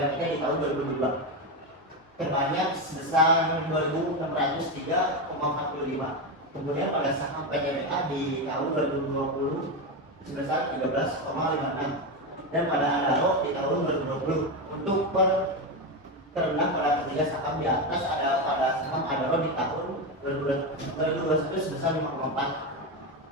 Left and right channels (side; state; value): both; normal; correlation 0.13